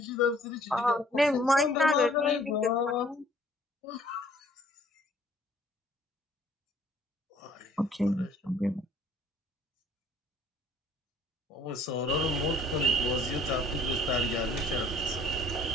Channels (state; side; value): normal; both; correlation 0.58